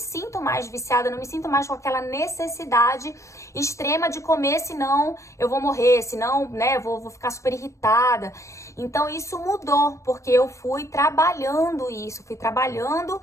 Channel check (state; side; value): late; right; 0.15 ms